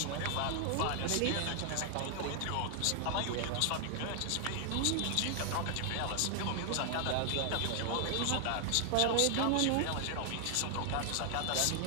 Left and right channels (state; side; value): different; both; correlation 0.00